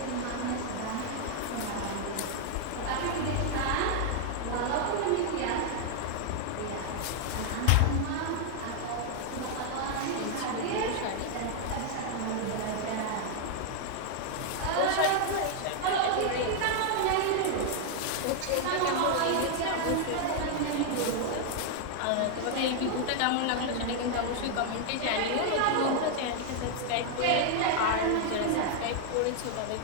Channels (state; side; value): different; both; correlation 0.00